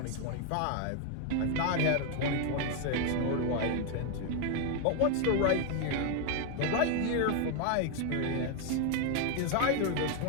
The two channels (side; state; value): both; different; correlation 0.01